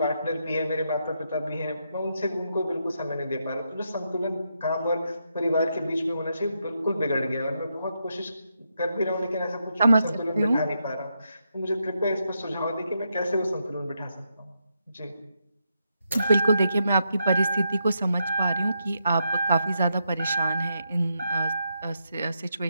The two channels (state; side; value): inverted; both; correlation -0.82